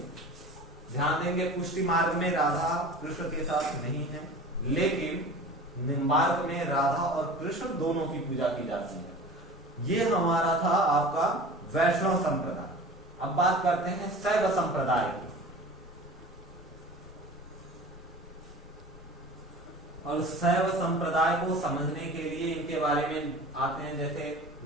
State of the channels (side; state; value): both; normal; correlation 0.38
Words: ध्यान देंगे, पुष्टि मार्ग में राधा कृष्ण के साथ नहीं है, लेकिन निम्बार्क में राधा और कृष्ण दोनों की पूजा की जाती है। ये हमारा था आपका वैष्णव संप्रदाय। अब बात करते हैं शैव संप्रदाय की। और शैव संप्रदाय को समझने के लिए इनके बारे में आते हैं, जैसे